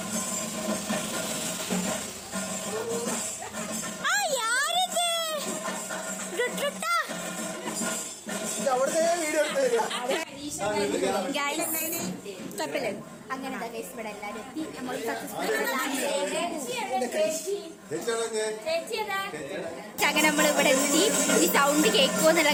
അങ്ങനെ ഇവിടെ എല്ലാവരും എത്തി. നമ്മൾ അങ്ങനെ നമ്മളിവിടെ എത്തി. ഈ സൗണ്ട് കേൾക്കുമോ എന്നുള്ള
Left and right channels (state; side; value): identical; both; correlation 1.00